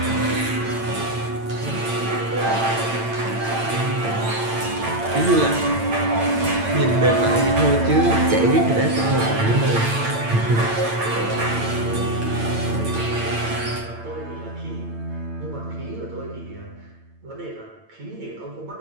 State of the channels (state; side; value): late; left; 8.8 ms